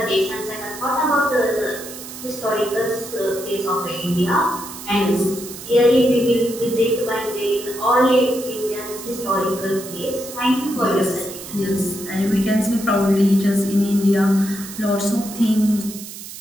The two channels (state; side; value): noise; right; hiss, 12 dB below the sound